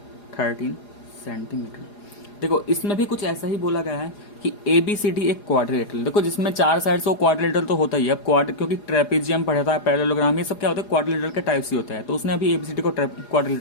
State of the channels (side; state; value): right; late; 4.9 ms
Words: 13 सेंटीमीटर। देखो इसमें भी कुछ ऐसा ही बोला गया है कि ABCD एक क्वाड्रिलेटरल, देखो जिसमें 4 साइड्स हो क्वाड्रिलेटरल तो होता ही है। अब क्योंकि ट्रेपेजियम पढ़ा था, पैरेललोग्राम, ये सब क्या होता है क्वाड्रिलेटरल के टाइप्स ही होता है, तो उसने अभी ABCD को